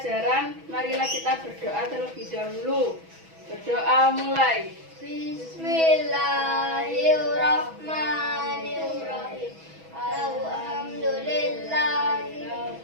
marilah kita berdoa terlebih dahulu. Berdoa mulai. Bismillahirrahmanirrahim.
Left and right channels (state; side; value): late; left; 6.1 ms